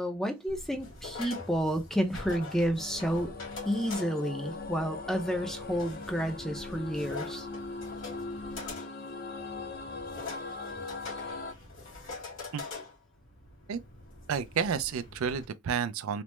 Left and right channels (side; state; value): both; normal; correlation 0.58